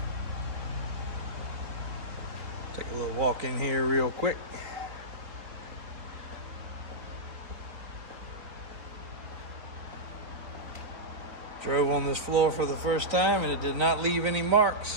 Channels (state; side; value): late; left; 3.9 ms